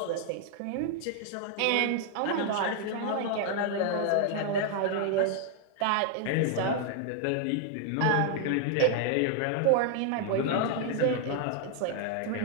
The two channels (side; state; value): both; different; correlation 0.00